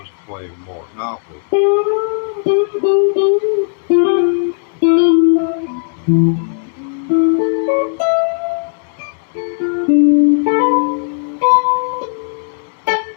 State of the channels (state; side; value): silent; right; digital silence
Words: to playing more Monopoly.